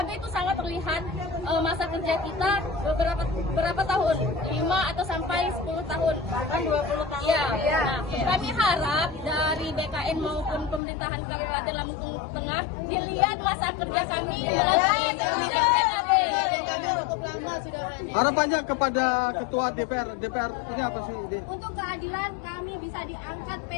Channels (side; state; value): right; drops out; at 10.8 s